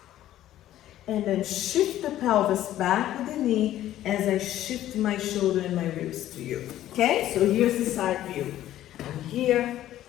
And then shift the pelvis back with the knee as I shift my shoulder and my ribs to you. Okay, so here's the side view. I'm here,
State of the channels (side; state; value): right; quieter; 13.1 dB